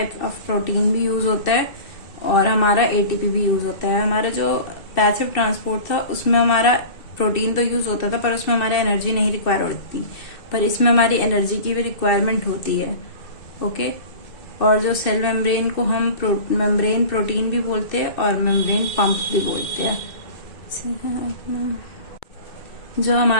ऑफ प्रोटीन भी यूज होता है और हमारा एटीपी भी यूज होता है। हमारा जो पैसिव ट्रांसपोर्ट था उसमें हमारा प्रोटीन तो यूज होता था पर उसमें हमारा एनर्जी नहीं रिक्वायर होती, पर इसमें हमारी एनर्जी की भी रिक्वायरमेंट होती है। ओके, और जो सेल मेम्ब्रेन को हम मेम्ब्रेन प्रोटीन भी बोलते हैं और मेम्ब्रेन पंप भी बोलते हैं। जो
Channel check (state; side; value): late; right; 2.6 ms